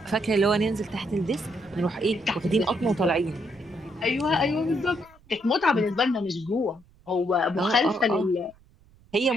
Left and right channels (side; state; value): right; noise; rumble, 28 dB below the sound